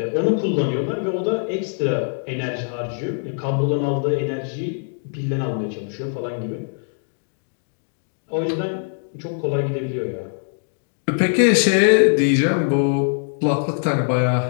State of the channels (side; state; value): right; silent; digital silence